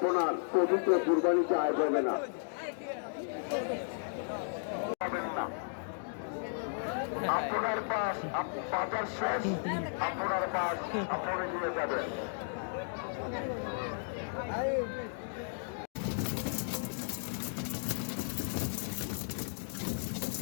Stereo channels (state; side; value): silent; right; digital silence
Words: পবিত্র কুরবানি আয় হবে না। আপনার পাশ বাজার শেষ, আপনার পাশ আপনি নিয়ে যাবেন।